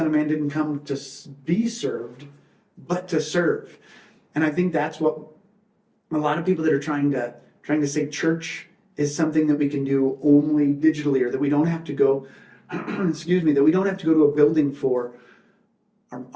of Man didn't come to be served, but to serve. And I think that's what a lot of people that are trying to say church is something that we can do only digitally, or that we don't have to go, that we don't have to go to a building for,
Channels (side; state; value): both; identical; correlation 1.00